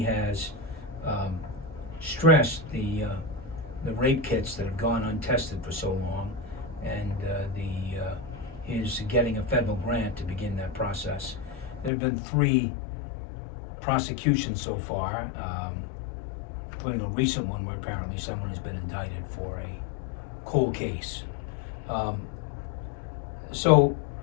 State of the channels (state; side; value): drops out; right; at 11.9 s